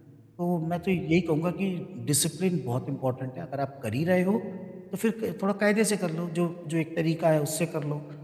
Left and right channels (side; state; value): both; identical; correlation 1.00